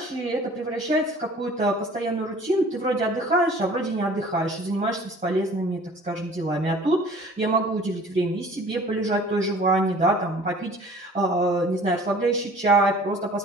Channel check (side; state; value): both; normal; correlation 0.49